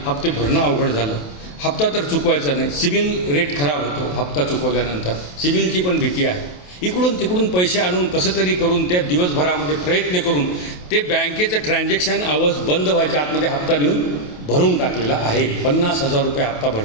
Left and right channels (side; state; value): right; late; 28 ms